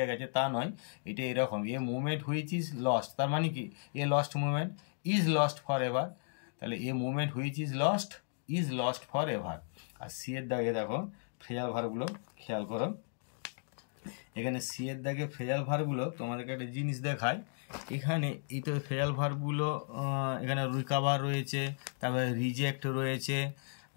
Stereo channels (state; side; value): silent; right; digital silence